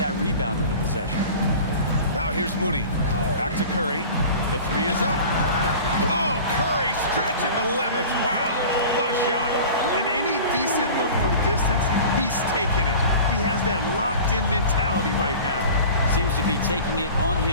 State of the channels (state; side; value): inverted; both; correlation -0.39